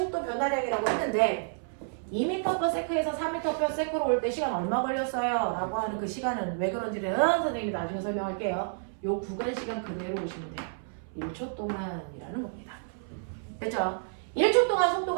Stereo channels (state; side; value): silent; left; 58 dB below the other